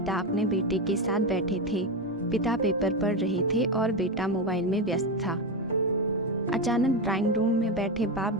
अपने बेटे के साथ बैठे थे। पिता पेपर पढ़ रहे थे और बेटा मोबाइल में व्यस्त था। अचानक ड्राइंग रूम में बैठे बाप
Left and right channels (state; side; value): normal; both; correlation 0.13